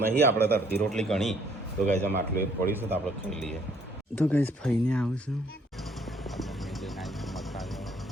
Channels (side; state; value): both; normal; correlation 0.64